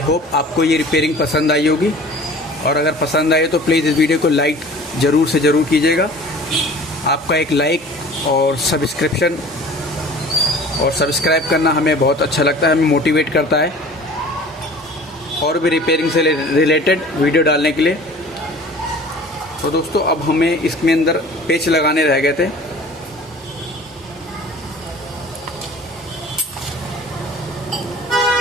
होप आपको ये रिपेयरिंग पसंद आई होगी, और अगर पसंद आए तो प्लीज़ इस वीडियो को लाइक ज़रूर से ज़रूर कीजिएगा। आपका एक लाइक और सब्सक्राइब करना हमें बहुत अच्छा लगता है, हमें मोटिवेट करता है और भी रिपेयरिंग से रिलेटेड वीडियो डालने के लिए। तो दोस्तों, अब हमें इसमें अंदर पेच लगाने रह गए थे।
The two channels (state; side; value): normal; both; correlation 0.44